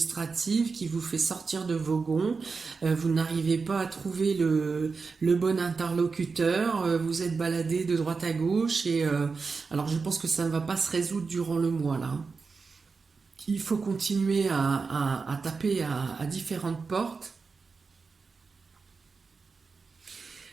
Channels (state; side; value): quieter; left; 4.7 dB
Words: qui vous fait sortir de vos gonds, vous n'arrivez pas à trouver le bon interlocuteur, vous êtes baladé de droite à gauche et alors je pense que ça ne va pas se résoudre durant le mois là, hein. Il faut continuer à taper à différentes portes.